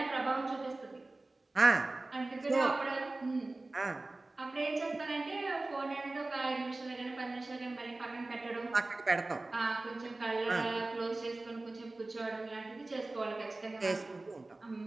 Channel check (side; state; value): left; quieter; 3.0 dB